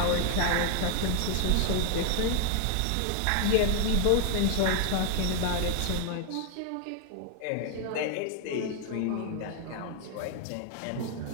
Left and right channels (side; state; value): both; different; correlation 0.00